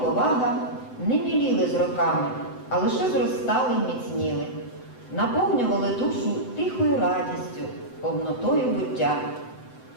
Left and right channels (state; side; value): late; right; 7.9 ms